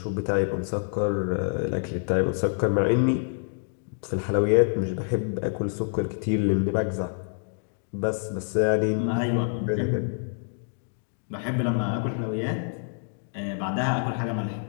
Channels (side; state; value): right; silent; digital silence